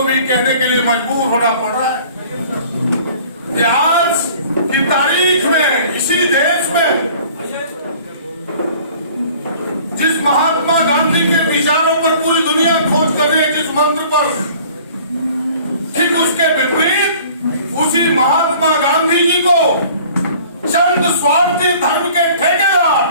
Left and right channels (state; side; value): inverted; both; correlation -0.50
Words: भी कहने के लिए मजबूर होना पड़ रहा है कि आज की तारीख में इसी देश में जिस महात्मा गांधी के विचारों पर पूरी दुनिया खोज कर रही है, जिस मंत्र पर, ठीक उसके विपरीत उसी महात्मा गांधी जी को चंद स्वार्थी धर्म के ठेकेदार,